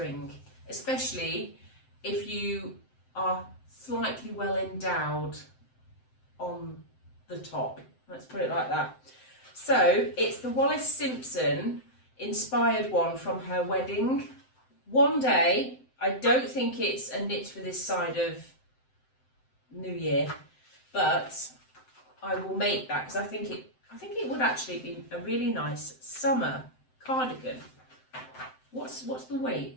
especially if you are slightly well endowed on the top. Let's put it like that. So it's the Wallis Simpson inspired one from her wedding. One day, I don't think it's a knit for this side of New Year, but I will make that because I think it would actually be a really nice summer cardigan. What's the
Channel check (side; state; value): right; late; 7.8 ms